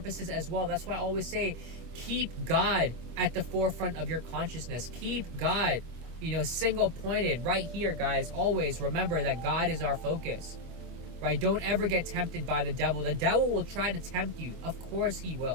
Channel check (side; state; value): left; late; 25 ms